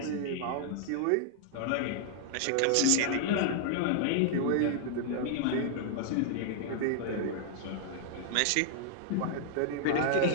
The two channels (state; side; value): different; both; correlation -0.01